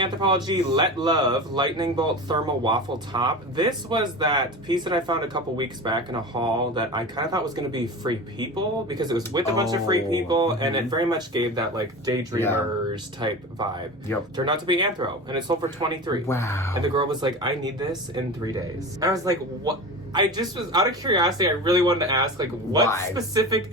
Let Love Lightning Bolt Thermal Waffle Top. This was that piece that I found a couple weeks back in a haul that I kind of thought was going to be Free People, because it was with a bunch of Free People, and it very much gave that like Daydreamers type vibe. Yep. Turned out to be Anthro, and it sold for $23. Wow. And the girl was like, I need this in 3 days. I was like, what? I just was, out of curiosity, I really wanted to ask, like, what Why?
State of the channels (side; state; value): both; normal; correlation 0.30